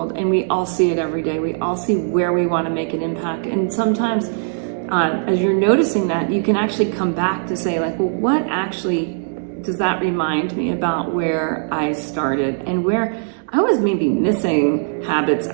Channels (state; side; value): silent; left; digital silence